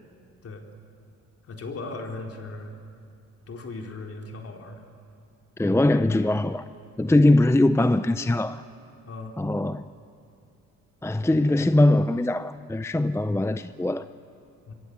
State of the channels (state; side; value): normal; both; correlation 0.94